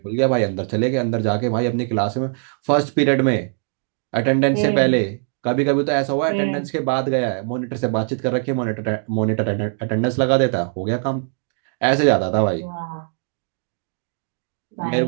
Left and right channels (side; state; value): left; silent; 61 dB below the other